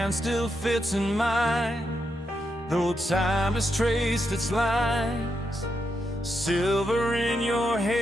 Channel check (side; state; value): both; normal; correlation 0.83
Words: still fits in mine, though time has traced its lines. Silver in your